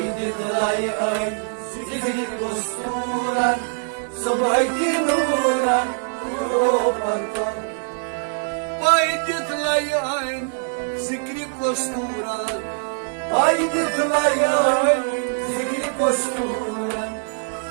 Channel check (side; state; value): left; silent; 57 dB below the other